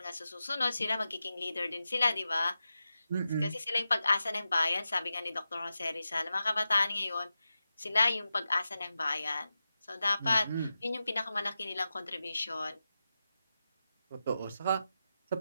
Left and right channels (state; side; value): inverted; both; correlation -0.92